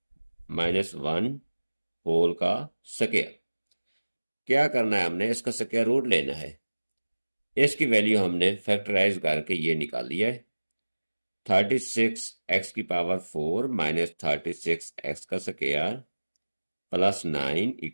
माइनस 1 होल का स्क्वायर। क्या करना है, हमने इसका स्क्वायर रूट लेना है। इसकी वैल्यू हमने फैक्टराइज करके ये निकाल लिया है। 36 एक्स की पावर 4 माइनस 36 एक्स का स्क्वायर प्लस 9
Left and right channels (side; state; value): both; inverted; correlation -1.00